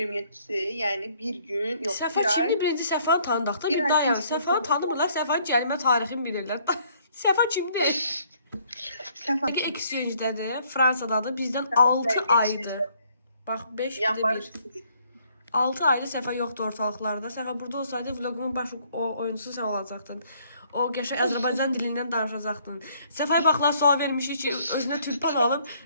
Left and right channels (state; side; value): inverted; both; correlation -0.64